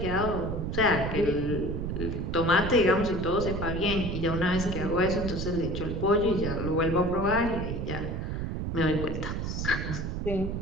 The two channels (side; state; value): right; noise; rumble, 3 dB below the sound